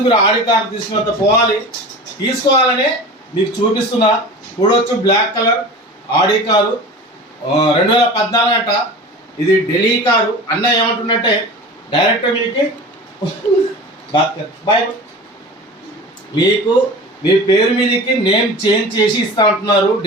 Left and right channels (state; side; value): normal; both; correlation 0.35